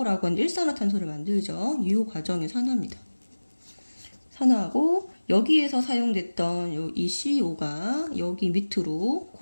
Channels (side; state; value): both; inverted; correlation -1.00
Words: 하는 일산화탄소를 만들죠. 이 과정의 산화입니다. 산화하고 여기에서 사용됐던 이 CO가 여기 밑으로